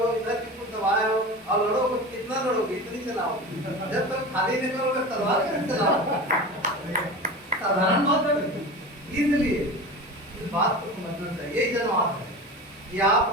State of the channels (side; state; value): both; normal; correlation 0.31